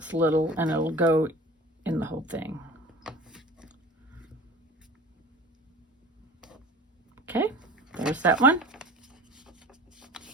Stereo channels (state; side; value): normal; both; correlation 0.40